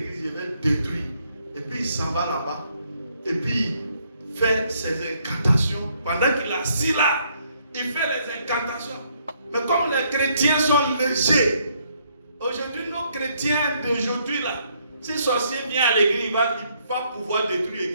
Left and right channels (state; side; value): inverted; both; correlation -0.70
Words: je vais détruire. Et puis il s'en va là-bas. Et puis il fait ses incantations. Pendant qu'il est assis là, il fait les incantations. Mais comme les chrétiens sont légers, aujourd'hui, nos chrétiens d'aujourd'hui là, si le sorcier vient à l'église, il va pouvoir détruire